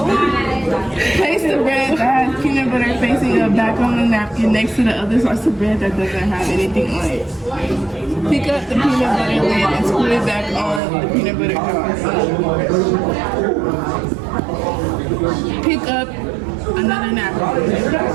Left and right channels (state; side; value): drops out; left; at 10.8 s